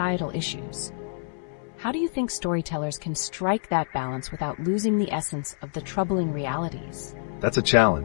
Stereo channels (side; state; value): right; silent; 60 dB below the other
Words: issues. How do you think storytellers can strike that balance without losing the essence of the troubling realities? That's a